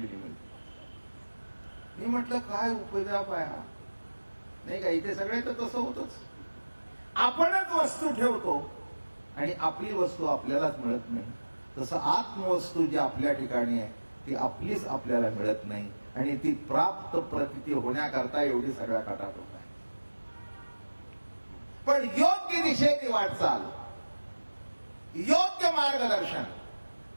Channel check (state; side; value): inverted; both; correlation -1.00